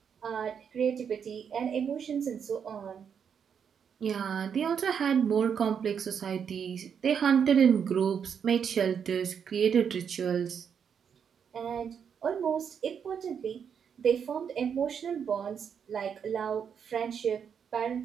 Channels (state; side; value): quieter; left; 7.4 dB